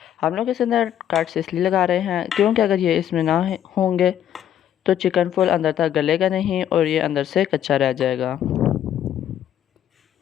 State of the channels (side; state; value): right; quieter; 10.6 dB